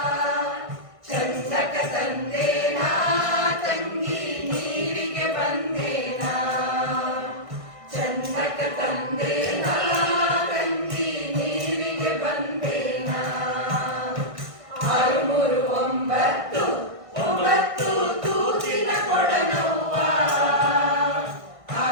ಚಂದಕ ತಂದೇನಾ ತಂಗಿ ನೀರಿಗೆ ಬಂದೇನಾ ಚಂದಕ ತಂದೇನಾ ತಂಗಿ ನೀರಿಗೆ ಬಂದೇನಾ 6 3 9 9 ತೂತಿನ ಕೊಡನವ್ವ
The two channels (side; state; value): left; late; 1.6 ms